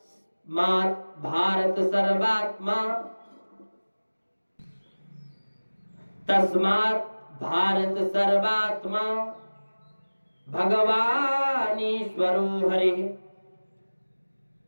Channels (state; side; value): inverted; both; correlation -1.00